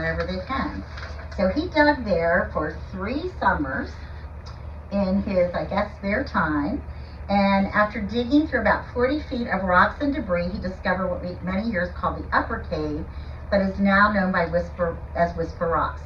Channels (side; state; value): both; identical; correlation 1.00